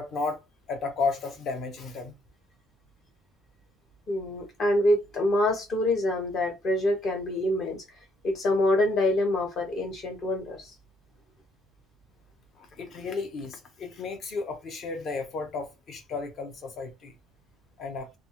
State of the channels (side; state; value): both; normal; correlation 0.70